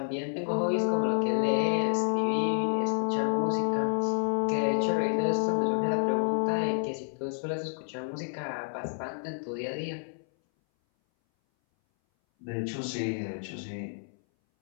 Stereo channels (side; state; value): right; silent; 58 dB below the other